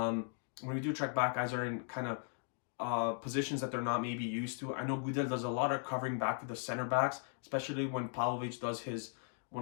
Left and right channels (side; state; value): right; silent; 53 dB below the other